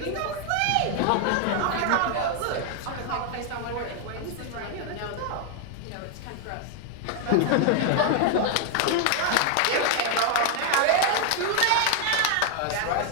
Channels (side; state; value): both; different; correlation 0.00